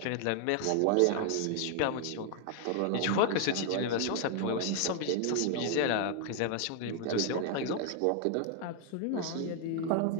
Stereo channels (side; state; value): both; different; correlation 0.00